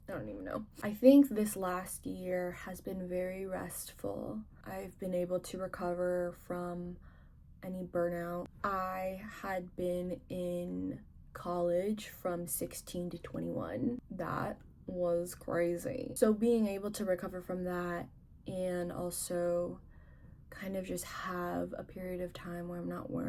I don't even know. I think this last year has been very restful. I've been able to recover from any burnout. I had been in college from 16 to 21. That was crazy. So being able to recover from that and also kind of just have a period of time where I'm not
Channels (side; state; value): both; identical; correlation 1.00